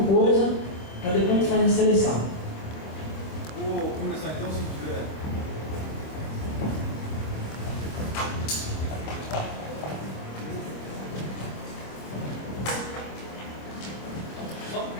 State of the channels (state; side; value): late; right; 25 ms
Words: coisa, para depois a gente fazer a seleção. Vou começar então, se tiver.